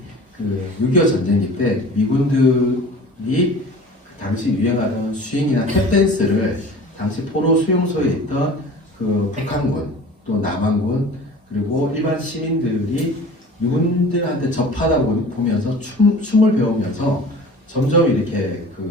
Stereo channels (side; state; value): both; normal; correlation 0.42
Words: 그 6.25 전쟁기 때 미군들이 그 당시 유행하던 스윙이나 탭댄스를 당시 포로 수용소에 있던 그 북한군 또 남한군 그리고 일반 시민들이 미군들한테 접하다 보면서 춤을 배우면서 점점 이렇게